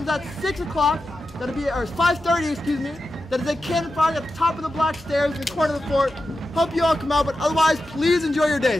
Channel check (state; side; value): normal; both; correlation 0.91